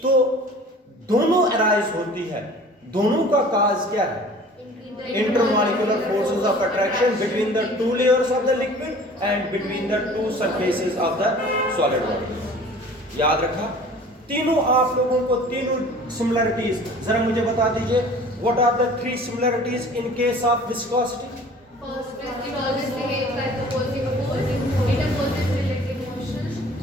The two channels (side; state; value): both; normal; correlation 0.46